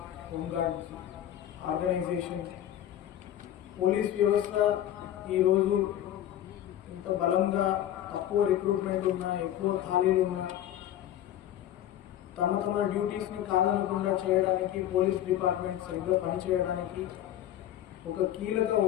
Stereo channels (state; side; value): quieter; right; 11.9 dB